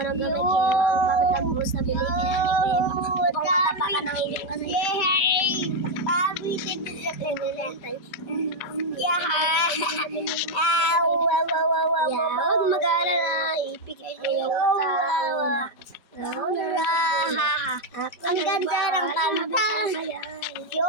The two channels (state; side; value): late; right; 4.2 ms